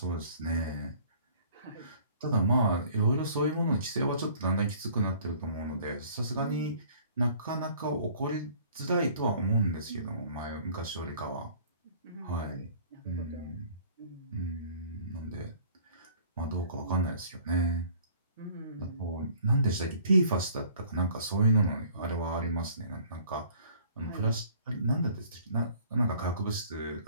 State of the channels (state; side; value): inverted; both; correlation -0.53